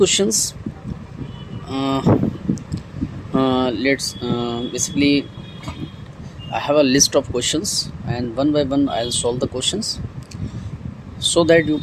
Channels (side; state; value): both; identical; correlation 1.00